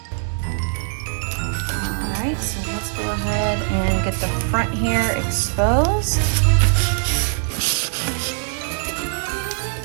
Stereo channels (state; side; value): silent; left; digital silence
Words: Alright, so let's go ahead and get the front here exposed.